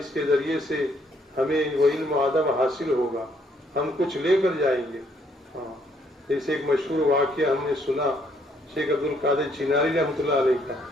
کے ذریعے سے ہمیں وہ علم و ادب حاصل ہوگا، ہم کچھ لے کر جائیں گے۔ جیسے ایک مشہور واقعہ ہم نے سنا شیخ عبد القادر چناری رحمۃ اللہ علیہ کا،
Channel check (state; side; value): normal; both; correlation 0.68